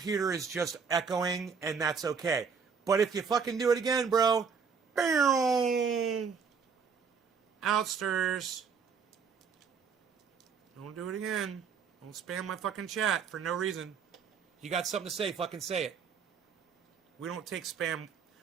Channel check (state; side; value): quieter; left; 6.0 dB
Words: is just echoing, and that's okay. But if you fucking do it again, bro, outsters. Don't do it again. Don't spam my fucking chat for no reason. You got something to say, fucking say it. We don't take spam.